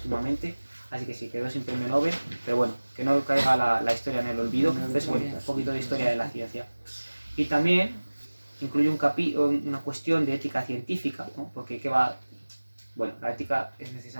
así que sí, quedó sin premio Nobel, pero bueno, que no caiga la historia en el olvido. Entonces, bueno, un poquito de historia de la ciencia. Y también incluye una cuestión de ética científica, ¿no? Porque bueno, la ética es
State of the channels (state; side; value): inverted; both; correlation -1.00